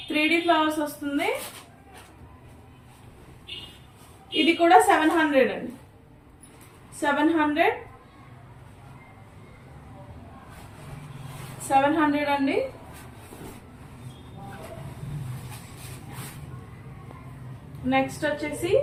3D ఫ్లవర్స్ వస్తుంది. ఇది కూడా 700 అండి. 700 అండి. నెక్స్ట్ వచ్చేసి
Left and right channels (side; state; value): both; identical; correlation 1.00